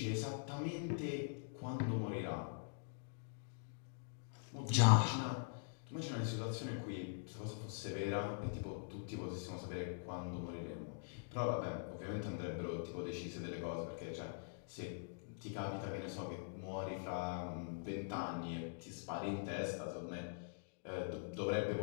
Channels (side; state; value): right; silent; digital silence